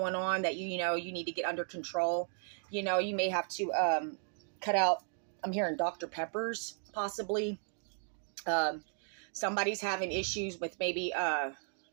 on that you need to get under control. You may have to cut out, I'm hearing Dr. Peppers possibly. Somebody's having issues with maybe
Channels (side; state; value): left; silent; 54 dB below the other